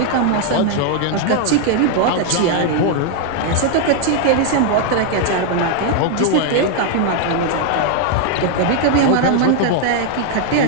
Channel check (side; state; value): both; different; correlation 0.00